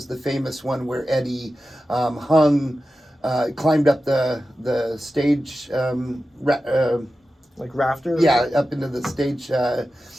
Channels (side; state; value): both; normal; correlation 0.93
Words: the famous one where Eddie climbed up the stage, like rafters. Yeah, up into the stage